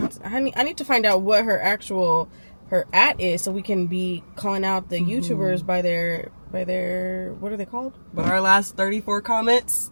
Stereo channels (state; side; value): inverted; both; correlation -1.00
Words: I need to find out what her at is, so we can be calling out the YouTubers by their what are they called? But our last 34 comments